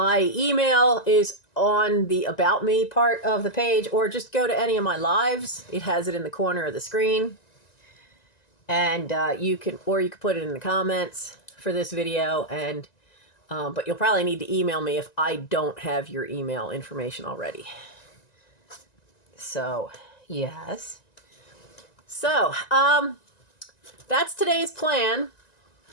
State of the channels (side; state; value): right; late; 1.9 ms